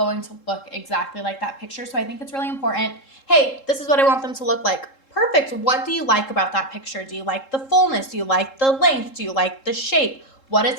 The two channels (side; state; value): right; late; 3.7 ms